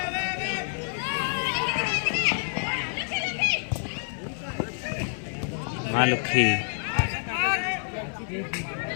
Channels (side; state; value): right; silent; 60 dB below the other